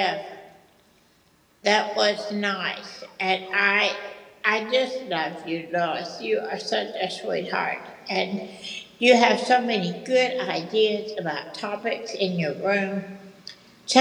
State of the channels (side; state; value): both; identical; correlation 1.00